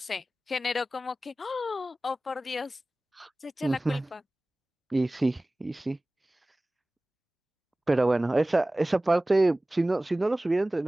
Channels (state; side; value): normal; both; correlation 0.98